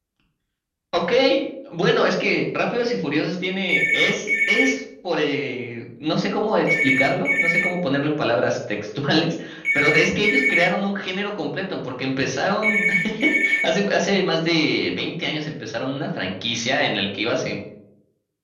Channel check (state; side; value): identical; both; correlation 1.00